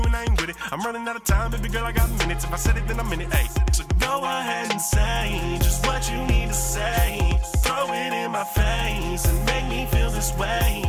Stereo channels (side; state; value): both; identical; correlation 1.00